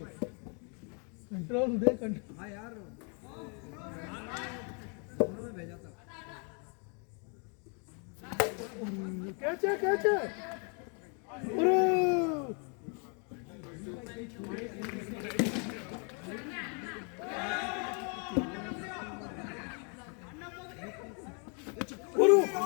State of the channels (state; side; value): quieter; right; 38.2 dB